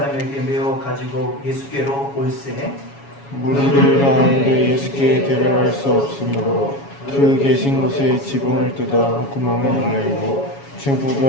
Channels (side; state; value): right; late; 7.2 ms